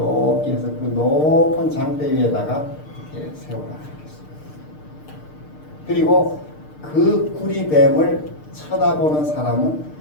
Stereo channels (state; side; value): late; right; 6.6 ms